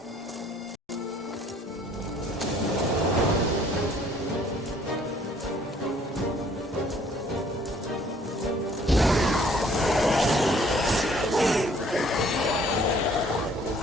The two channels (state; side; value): normal; both; correlation 0.59